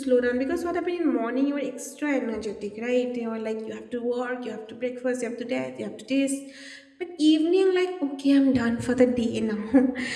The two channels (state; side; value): identical; both; correlation 1.00